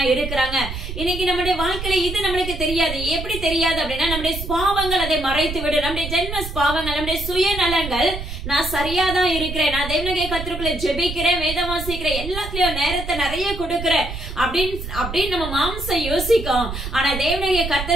இருக்கிறாங்க. இன்னைக்கு நம்முடைய வாழ்க்கையில இது நம்மளுக்கு தெரியாது. எப்படி தெரியாது அப்படின்னா, நம்முடைய பாவங்கள் அதை மறைத்து விடும். நம்முடைய ஜென்ம பாவங்கள், நம்முடைய சுயநலங்கள், நான் சரியாதான் இருக்கிறேன், நான் தேவனுடைய கர்த்தருக்குள்ள ஜெபிக்கிறேன், வேதம் வாசிக்கிறேன், எல்லாத்துலயும் நேரத்தை நிறைய கொடுக்கிறேன் அப்படின்னு நம்ம மாம்சம் யோசிக்கும். ஆனா தேவனுடைய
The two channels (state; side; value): noise; right; rumble, 7 dB below the sound